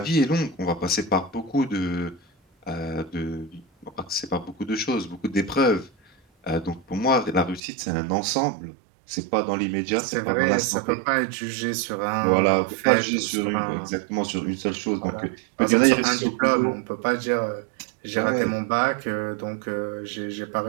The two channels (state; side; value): drops out; left; at 7.6 s